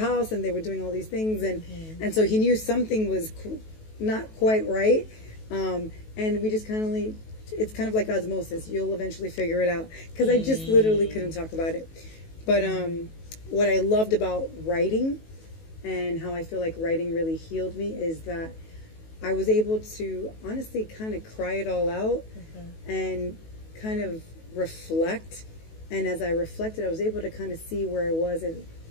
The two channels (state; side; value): late; right; 19 ms